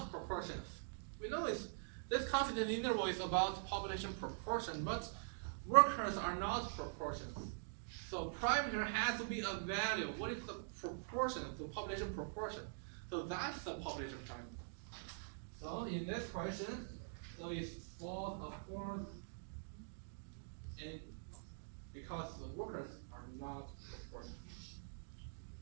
proportions. We know this confidence interval is about population proportion, but workers are not proportions. So parameter has to be a value. What is the proportion, the population proportion? So that's the population parameter. So in this question, so it's false, of course, and because the workers are not proportion.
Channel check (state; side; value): silent; left; digital silence